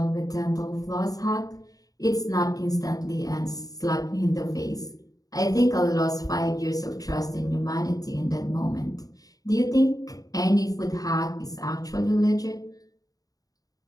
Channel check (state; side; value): late; right; 0.18 ms